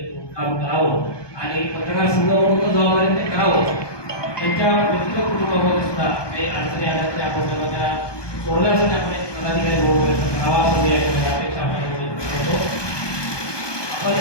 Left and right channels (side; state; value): right; late; 1.2 ms